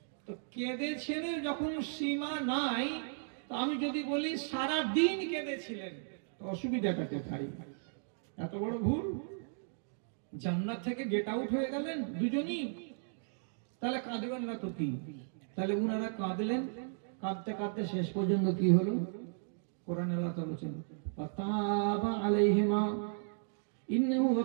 তো কেঁদেছেন যখন সীমা নাই, তো আমি যদি বলি সারা দিন কেঁদেছিলেন, অসুবিধাটা কোথায়? এত বড় ভুল। জান্নাত থেকে গেট আউট হয়ে গেলেন দুজনই, তাহলে কাঁদবেন না তো কি? তাহলে উনারা কাঁদলেন, কাঁদতে কাঁদতে শেষ পর্যন্ত কি হলো? কোরআন আল্লাহ তাআলা বলেছেন ফাতাবা আলাইহিমা ইন্নাহু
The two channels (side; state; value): left; silent; digital silence